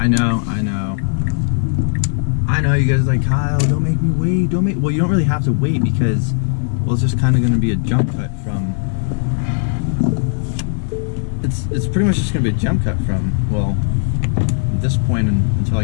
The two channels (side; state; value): right; silent; 68 dB below the other